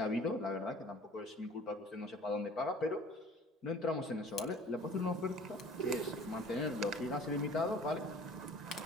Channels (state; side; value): normal; both; correlation 0.49